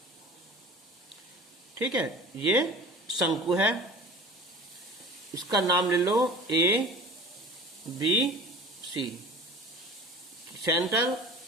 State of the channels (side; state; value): both; normal; correlation 0.40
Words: ठीक है, ये शंकु है, इसका नाम ले लो ए बी सी। सेंटर